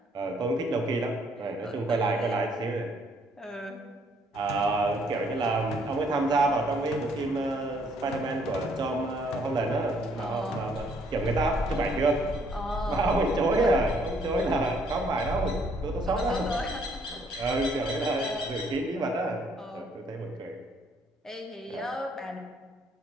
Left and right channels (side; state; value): both; normal; correlation 0.66